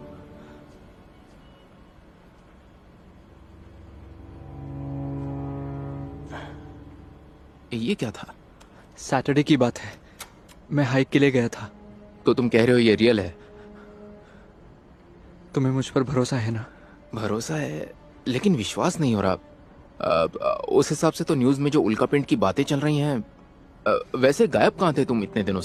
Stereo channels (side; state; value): both; identical; correlation 1.00